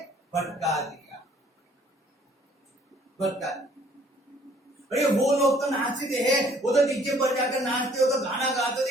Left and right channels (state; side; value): normal; both; correlation 0.59